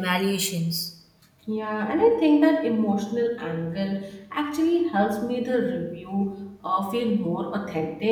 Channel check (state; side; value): identical; both; correlation 1.00